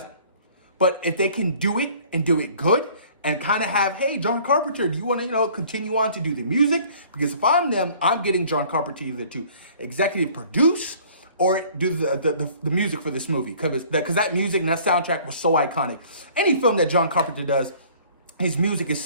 But if they can do it and do it good, and kind of have, hey, John Carpenter, do you want to, continue on to do the music? Because if I'm them, I'm getting John Carpenter either to executive produce or do the music for this movie. Because that music and that soundtrack was so iconic. Any film that John Carpenter does, his music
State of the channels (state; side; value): inverted; both; correlation -0.53